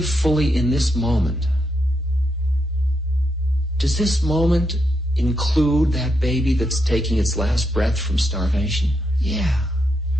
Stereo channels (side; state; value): both; normal; correlation 0.82